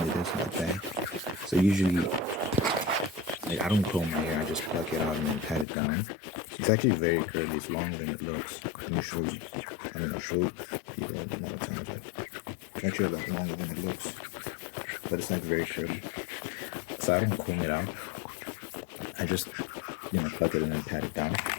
it is in the back. So usually, like, I don't comb my hair. I just pluck it out and then pat it down. It's actually very curly. It's longer than it looks. Let me show you. I mean, I'll show you more times. It's actually a lot longer than it looks, but it's like very curly. So I don't comb it out. I just, pluck it and then pat it down.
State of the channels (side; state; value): right; drops out; at 5.7 s